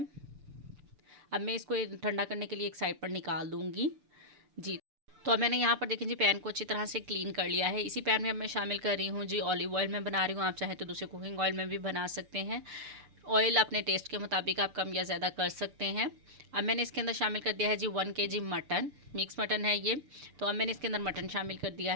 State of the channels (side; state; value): left; late; 6.8 ms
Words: अब मैं इसको ठंडा करने के लिए एक साइड पर निकाल दूँगी जी। तो अब मैंने यहाँ पर देखें जी पैन को अच्छी तरह से क्लीन कर लिया है। इसी पैन में अब मैं शामिल कर रही हूँ जी ऑलिव ऑयल में बना रही हूँ, आप चाहें तो दूसरे कुकिंग ऑयल में भी बना सकते हैं। ऑयल अपने टेस्ट के मुताबिक आप कम या ज़्यादा कर सकते हैं। अब मैंने इसके अंदर शामिल कर दिया है जी 1 kg मटन, मिक्स मटन है ये। तो अब मैंने इसके अंदर मटन शामिल कर दिया